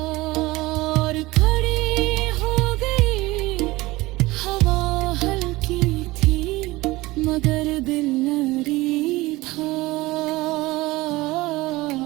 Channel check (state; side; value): quieter; left; 20.1 dB